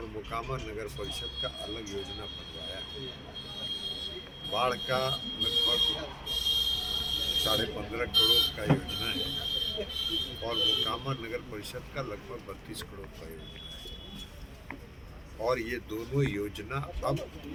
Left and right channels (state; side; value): identical; both; correlation 1.00